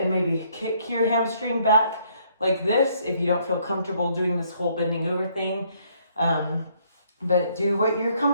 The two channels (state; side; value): inverted; both; correlation -0.67